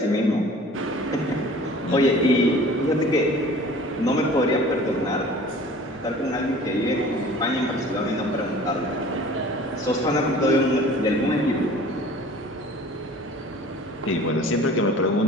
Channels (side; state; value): both; normal; correlation 0.46